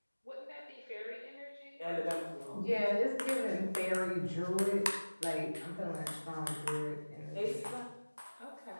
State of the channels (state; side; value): inverted; both; correlation -1.00